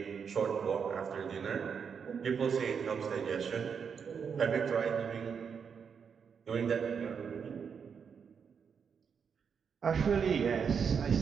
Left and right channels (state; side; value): quieter; left; 6.6 dB